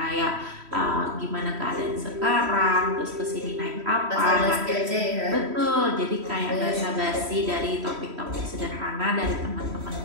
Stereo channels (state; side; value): late; left; 3.1 ms